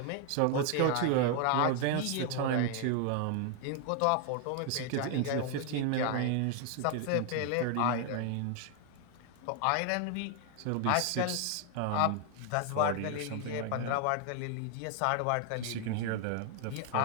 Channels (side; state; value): both; different; correlation 0.00